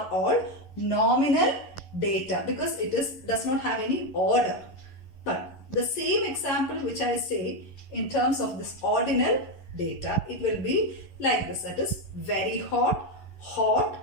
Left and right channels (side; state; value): right; late; 11 ms